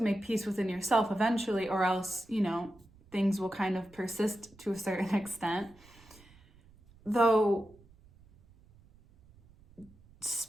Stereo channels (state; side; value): noise; right; rumble, 27 dB below the sound